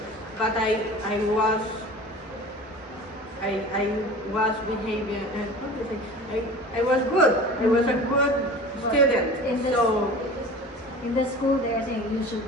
but I was behaving. How do you say? I was good. I was a good student. In the, So. in the school, they are saying you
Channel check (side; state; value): both; normal; correlation 0.38